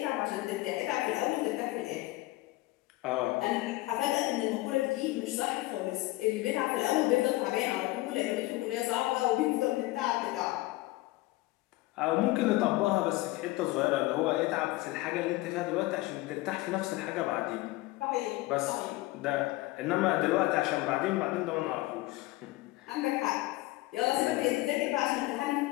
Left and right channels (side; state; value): right; quieter; 19.3 dB